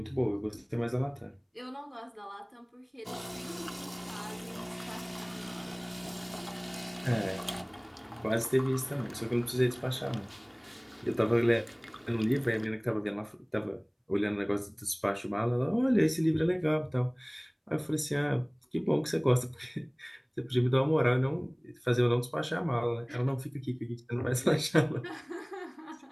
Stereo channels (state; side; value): identical; both; correlation 1.00